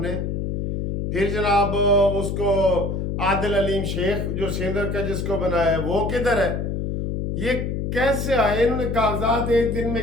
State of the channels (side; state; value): left; noise; hum, 2 dB below the sound